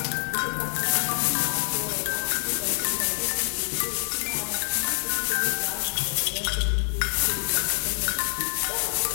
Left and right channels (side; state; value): right; silent; digital silence